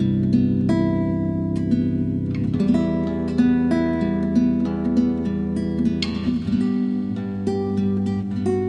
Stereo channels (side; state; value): both; identical; correlation 1.00